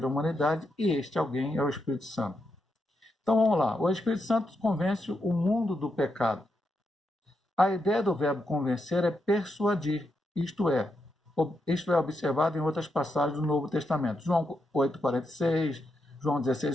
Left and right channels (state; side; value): normal; both; correlation 0.83